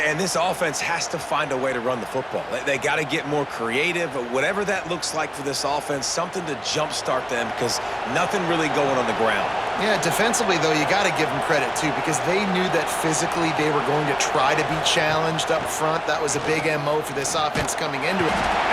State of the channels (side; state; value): both; identical; correlation 1.00